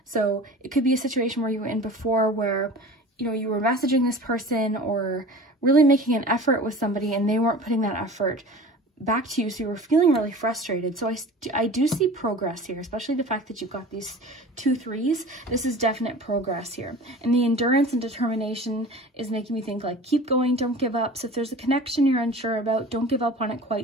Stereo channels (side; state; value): both; normal; correlation 0.40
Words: So it could be a situation where you were in before where, you know, you were messaging this person or really making an effort with somebody and they weren't putting that effort back to you. So you were feeling really frustrated. So I do see progress here, especially the fact that you've got these 2 3s. This is definite progress here. And the endurance and determination is making me think like, keep going, don't give up. So if there's a connection you're unsure about, don't give up on it